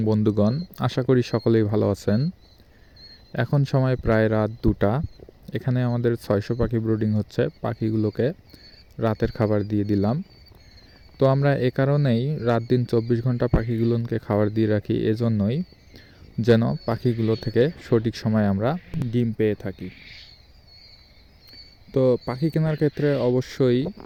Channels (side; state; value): both; identical; correlation 1.00